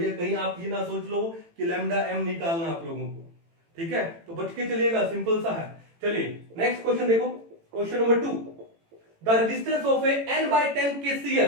कहीं आप ये ना सोच लो कि लैम्डा एम निकालना आप लोगों को। ठीक है, तो बच के चलिएगा, सिंपल सा है। चलिए नेक्स्ट क्वेश्चन देखो, question number 2, the resistance of A n/10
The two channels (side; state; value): left; late; 18 ms